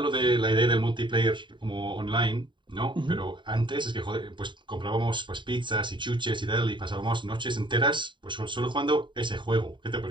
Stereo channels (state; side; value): late; left; 0.23 ms